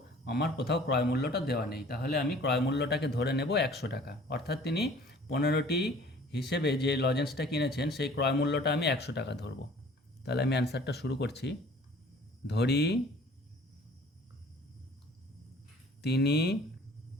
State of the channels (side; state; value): both; normal; correlation 0.51